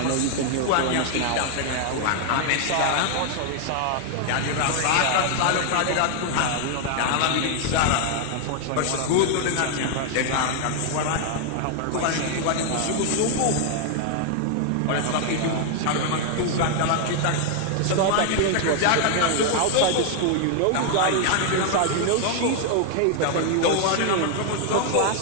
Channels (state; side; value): different; both; correlation 0.00